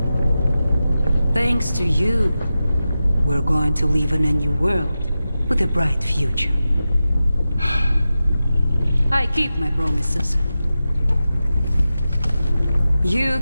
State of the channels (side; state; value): both; inverted; correlation -0.93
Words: Thanks to you, we're going to live in a new world with a bright future. I keep my promises. You